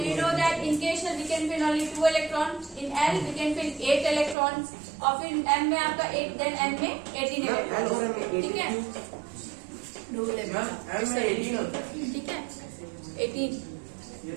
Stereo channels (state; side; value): drops out; left; at 4.4 s